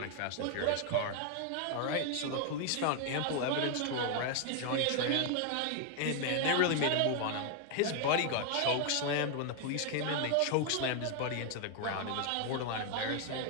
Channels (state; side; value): different; both; correlation 0.01